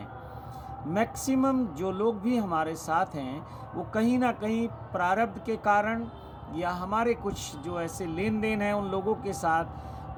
मैक्सिमम जो लोग भी हमारे साथ हैं वो कहीं ना कहीं प्रारब्ध के कारण या हमारे कुछ जो ऐसे लेन देन हैं उन लोगों के साथ,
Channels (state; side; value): identical; both; correlation 1.00